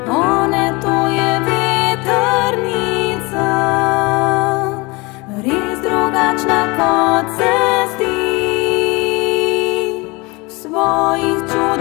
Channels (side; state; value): right; quieter; 25.5 dB